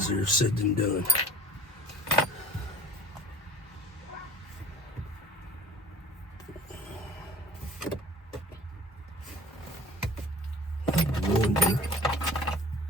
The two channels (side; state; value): both; normal; correlation 0.41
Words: said than done. go.